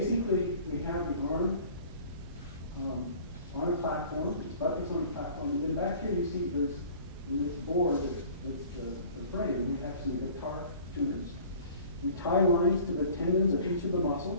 we have the arm on a platform, it's buttressed on a platform, and then back here you see there's in this board that's the frame, we have some guitar tuners. We tie lines to the tendons of each of the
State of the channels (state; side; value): inverted; both; correlation -0.47